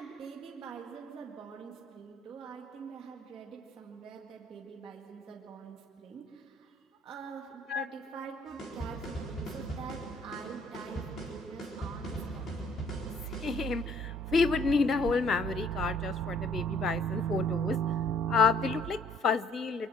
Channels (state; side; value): normal; both; correlation 0.60